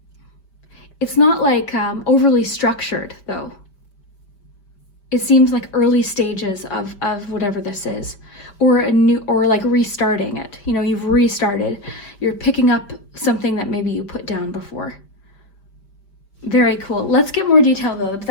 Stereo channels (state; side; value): late; right; 5.1 ms